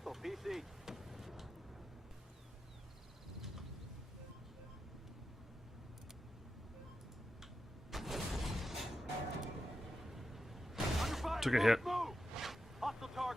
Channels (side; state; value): both; normal; correlation 0.88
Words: PC. Under fire. Took a hit. Move. Hostile